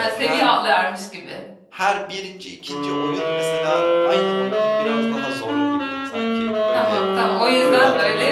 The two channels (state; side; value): identical; both; correlation 1.00